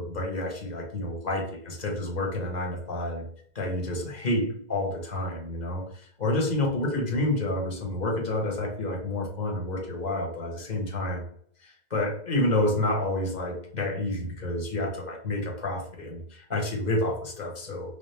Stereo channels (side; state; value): left; late; 2.0 ms